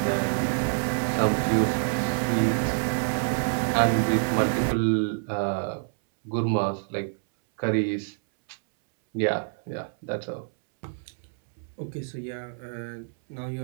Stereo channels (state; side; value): silent; left; 60 dB below the other